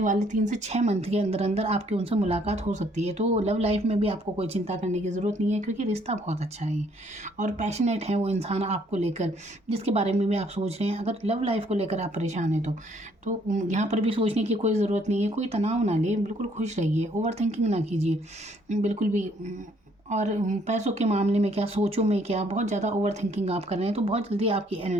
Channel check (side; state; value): both; normal; correlation 0.65